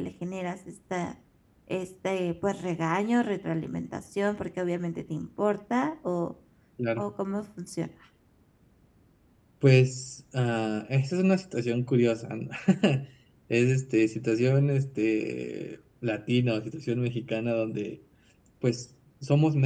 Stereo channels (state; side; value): identical; both; correlation 1.00